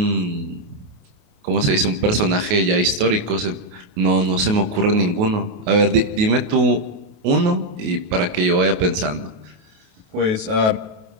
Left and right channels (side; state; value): left; late; 28 ms